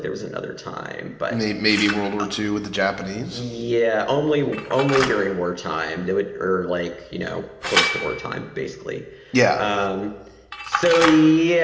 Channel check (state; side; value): identical; both; correlation 1.00